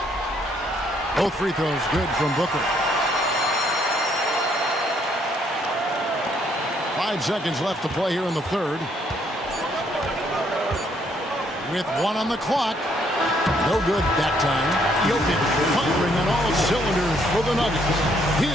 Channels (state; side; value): normal; both; correlation 0.69